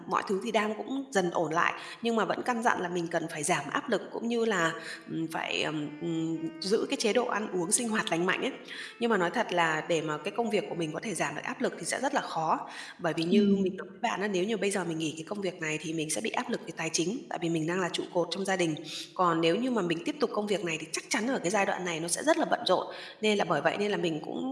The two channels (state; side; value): identical; both; correlation 1.00